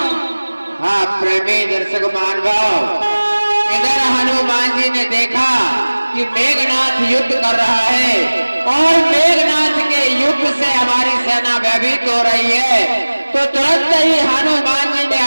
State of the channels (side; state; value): both; inverted; correlation -1.00